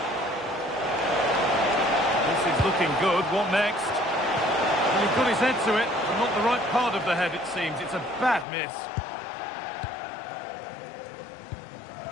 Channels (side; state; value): right; drops out; at 8.5 s